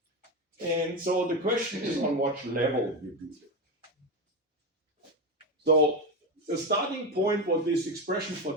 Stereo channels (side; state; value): both; normal; correlation 0.15